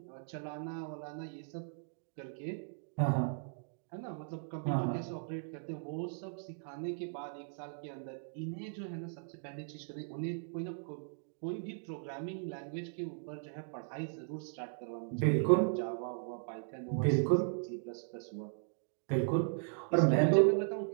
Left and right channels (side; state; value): left; silent; digital silence